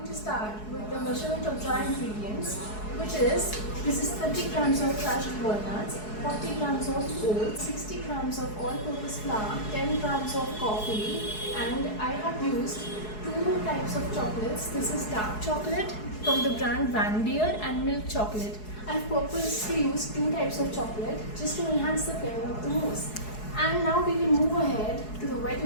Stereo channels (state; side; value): late; right; 4.7 ms